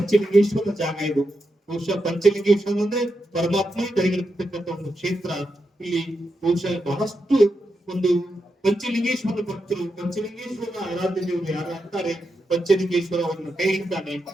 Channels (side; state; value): both; normal; correlation 0.86